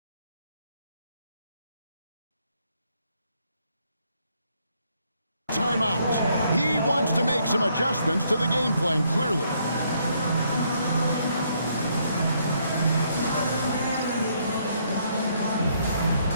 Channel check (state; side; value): inverted; both; correlation -0.71